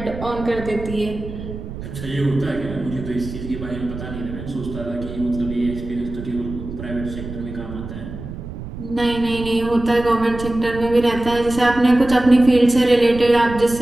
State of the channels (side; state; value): right; noise; rumble, 10 dB below the sound